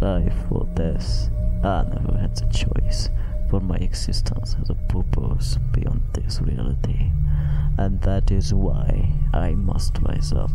Life or death, I never had the choice, for my existence has a purpose beyond this reality, and that is why I must rise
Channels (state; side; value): identical; both; correlation 1.00